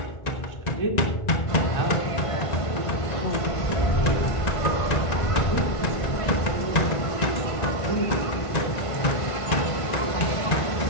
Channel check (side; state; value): right; late; 1.5 ms